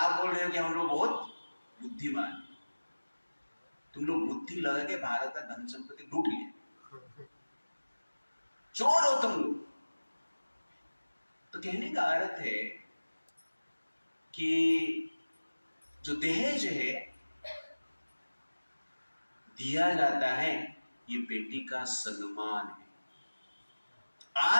बोल रहे हो कि हम लोग बहुत बुद्धिमान हैं। तुम लोग बुद्धि लगा के भारत का धन संपत्ति लूट लिए, चोर हो तुम लोग। तो कहने का अर्थ है कि जो दहेज है दिया जाता है, ये बेटी का सम्मान है।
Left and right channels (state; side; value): inverted; both; correlation -1.00